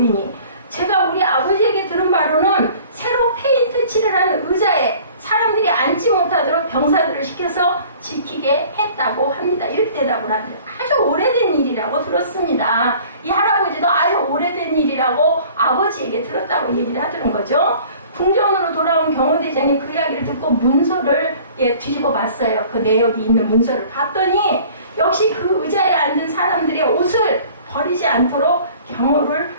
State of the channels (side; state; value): both; inverted; correlation -0.49